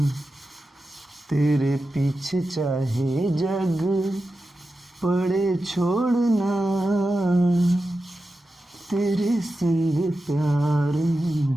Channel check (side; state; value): both; normal; correlation 0.92